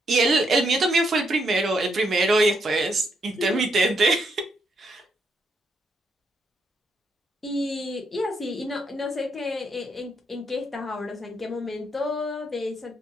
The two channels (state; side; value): normal; both; correlation 0.77